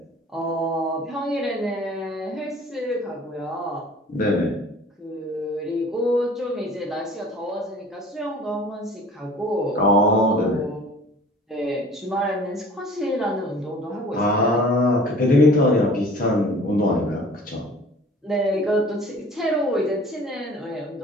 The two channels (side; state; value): both; normal; correlation 0.48